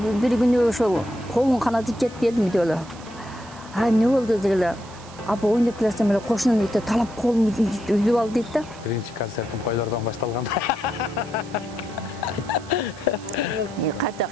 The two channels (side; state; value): right; noise; hiss, 20 dB below the sound